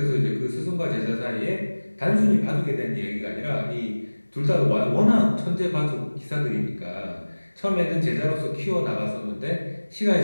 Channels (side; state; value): both; inverted; correlation -1.00